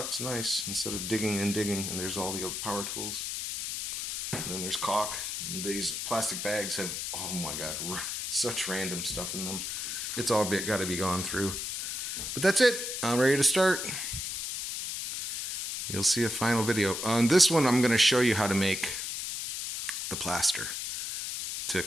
It's nice instead of digging and digging. And there's all the power tools. And then there's caulk. And these plastic bags have, oh my God, such random stuff in them. It's all got to be gone through. But that's it. I'm ready to start. You'll see a final video. On this one, I'm going to show you how to make the plaster to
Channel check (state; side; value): noise; left; hiss, 4 dB below the sound